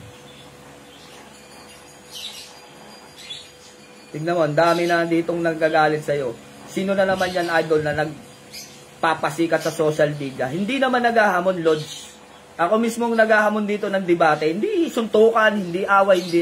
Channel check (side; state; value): both; identical; correlation 1.00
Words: Tingnan mo, ang dami na ditong nagagalit sa'yo. Sino na naman yan, idol, na nagpapasikat sa social media? Hindi naman naghahamon, Lods. Ako mismong naghahamon dito ng debate. Hindi suntukan, hindi away,